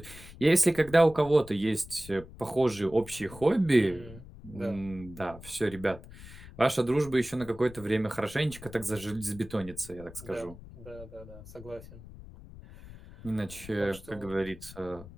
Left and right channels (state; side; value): noise; left; rumble, 17 dB below the sound